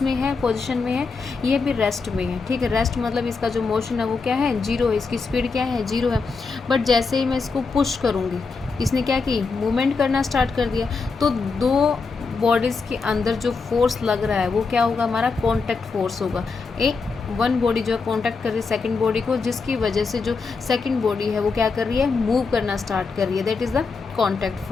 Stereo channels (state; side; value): quieter; right; 4.6 dB